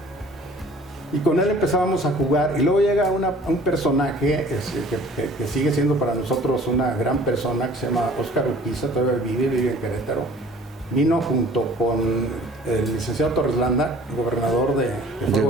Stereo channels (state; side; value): normal; both; correlation 0.50